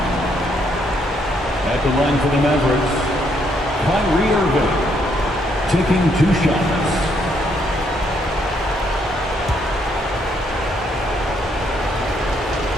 At the line for the Mavericks, Kyrie Irving taking 2 shots.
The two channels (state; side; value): normal; both; correlation 0.72